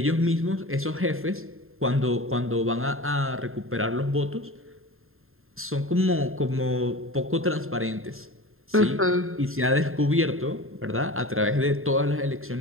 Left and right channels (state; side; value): late; left; 0.61 ms